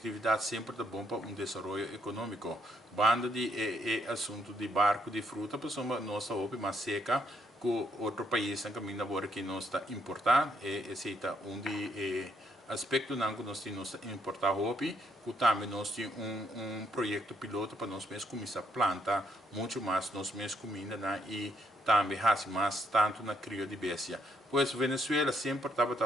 sempre é bom para desenvolvimento econômico. Banda de assunto de barco de fruta, pessoa nossa roupa mais seca que outro país em caminho agora que nós está importar esse é aspecto não que nós temos importar roupa, que também nós temos projeto piloto para nós mesmos começar a plantar muito mais nós mesmos comida e também faz mais tanto na cria de bestia. Pois Venezuela sempre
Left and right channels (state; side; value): normal; both; correlation 0.70